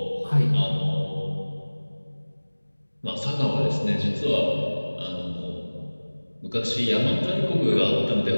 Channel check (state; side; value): inverted; both; correlation -1.00